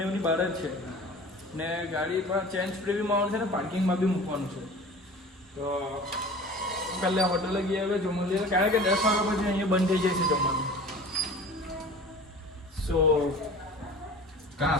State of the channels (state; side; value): normal; both; correlation 0.41